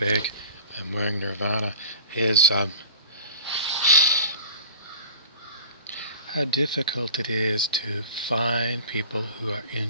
I'm wearing Nirvana, is how difficult it is to find people who are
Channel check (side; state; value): both; inverted; correlation -0.40